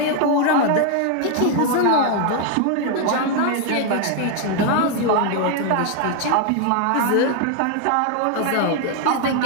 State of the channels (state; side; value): different; both; correlation 0.00